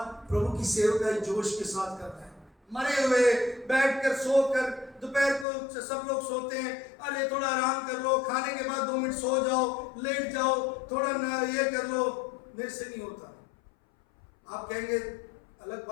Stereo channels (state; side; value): drops out; right; at 5.5 s